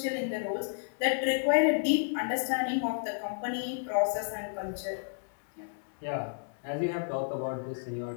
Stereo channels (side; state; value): right; silent; digital silence